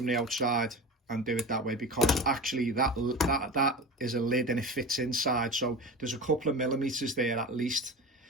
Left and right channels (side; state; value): both; normal; correlation 0.30